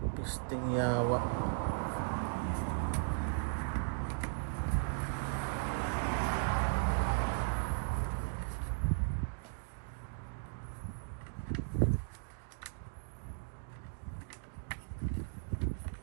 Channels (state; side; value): silent; left; digital silence